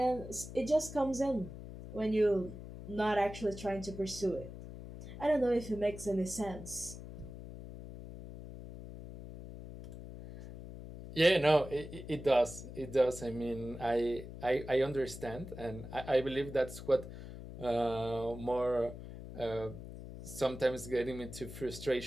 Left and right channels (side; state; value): left; noise; hum, 12 dB below the sound